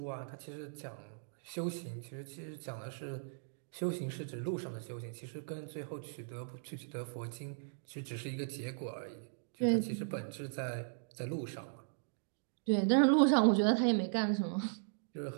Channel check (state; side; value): silent; left; digital silence